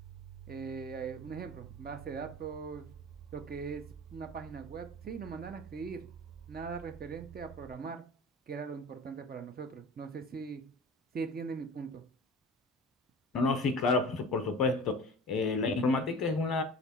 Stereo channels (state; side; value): normal; both; correlation 0.39